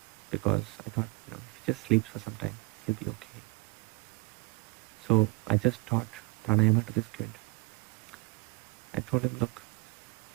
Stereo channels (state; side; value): quieter; left; 30.6 dB